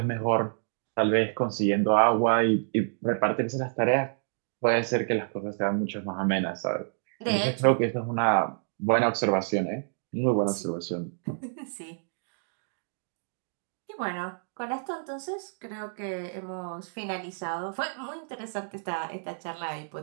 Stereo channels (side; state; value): left; silent; digital silence